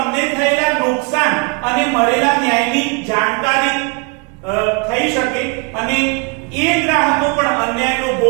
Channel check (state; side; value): quieter; left; 31.4 dB